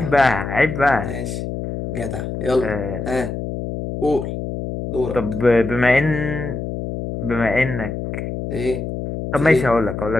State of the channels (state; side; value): noise; left; hum, 5 dB below the sound